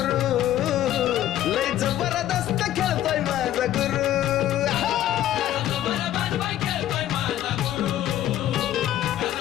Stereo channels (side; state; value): right; quieter; 12.7 dB